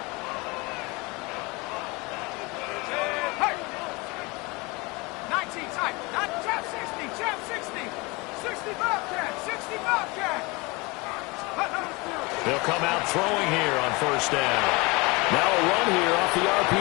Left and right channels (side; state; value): right; quieter; 25.8 dB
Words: Hey! 19 type, not Chap 60, Chap 60. 60 Bobcat, 60 Bobcat. They'll come out throwing here on 1st down. Now a run here off the